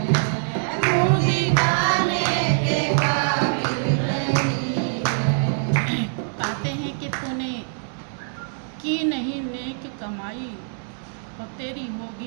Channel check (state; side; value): silent; left; digital silence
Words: कमाई और तेरी